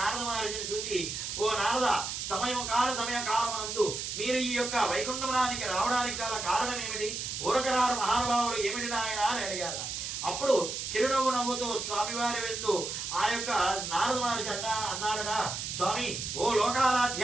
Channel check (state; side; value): noise; right; hiss, 4 dB below the sound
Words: మహర్షిని చూచి, ఓ నారద, సమయకాలమునందు మీరు ఈ యొక్క వైకుంఠమునానికి రావడానికి గల కారణం ఏమిటి? ఊరకరారు మహానుభావులు ఏమిటి నాయన అని అడిగారు. అప్పుడు చిరునవ్వు నవ్వుతూ స్వామివారి వెళ్తూ ఆ యొక్క నారద మహర్షి అన్నాడట, స్వామి, ఓ